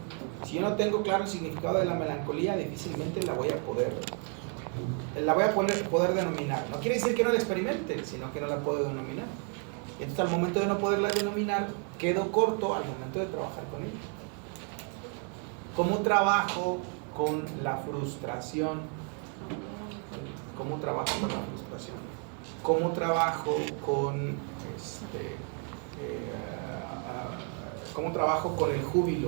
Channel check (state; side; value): quieter; left; 39.4 dB